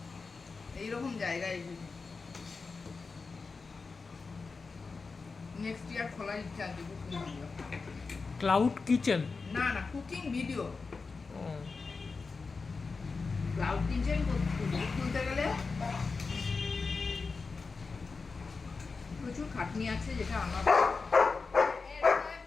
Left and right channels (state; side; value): quieter; right; 4.4 dB